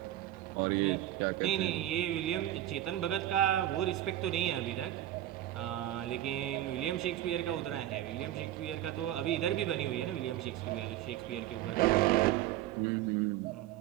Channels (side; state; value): left; quieter; 13.4 dB